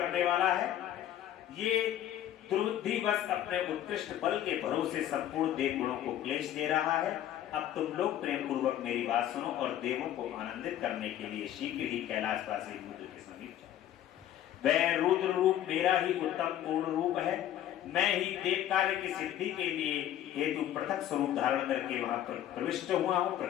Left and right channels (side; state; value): right; quieter; 11.7 dB